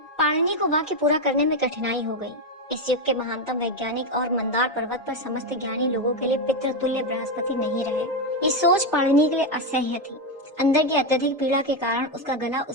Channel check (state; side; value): normal; both; correlation 0.08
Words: पाणिनि को वाक्य पूरा करने में कठिनाई हो गई। इस युग के महानतम वैज्ञानिक और मंदार पर्वत पर समस्त ज्ञानी लोगों के लिए पितृतुल्य बृहस्पति नहीं रहे। ये सोच पाणिनि के लिए असह्य थी। अंदर की अत्यधिक पीड़ा के कारण उसका गला